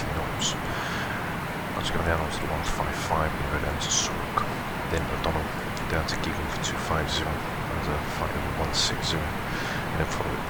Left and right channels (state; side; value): identical; both; correlation 1.00